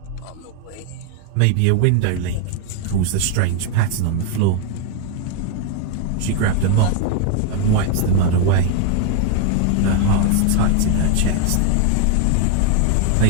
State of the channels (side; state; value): both; different; correlation 0.00